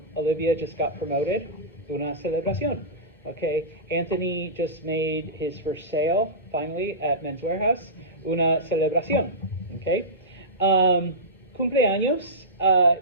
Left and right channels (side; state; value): both; normal; correlation -0.17